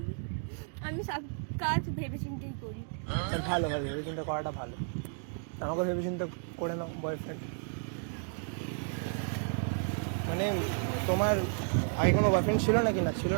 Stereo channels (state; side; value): silent; left; 56 dB below the other